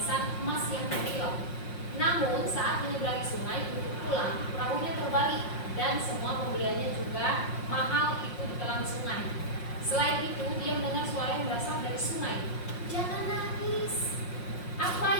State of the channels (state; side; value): late; right; 5.6 ms